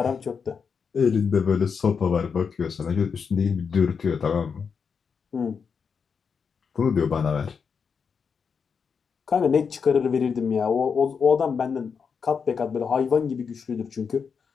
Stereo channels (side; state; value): right; quieter; 6.1 dB